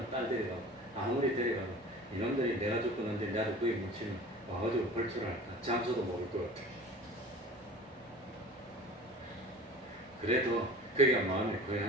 딸 데려가고, 아무리 데려가고 이놈들이 내가 죽었는데 나도 거기 묻히면 와가지고 벌초를 할까? 장소도 모를 것 같아. 그래도 거기가 마음의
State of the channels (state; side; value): normal; both; correlation 0.40